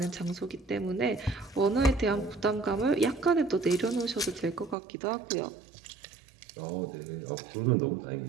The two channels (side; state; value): left; drops out; at 4.8 s